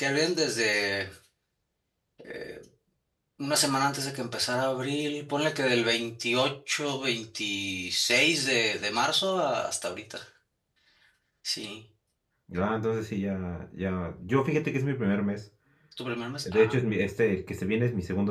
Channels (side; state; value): both; identical; correlation 1.00